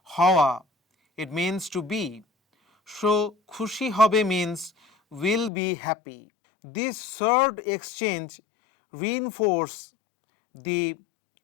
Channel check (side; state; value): right; drops out; at 5.5 s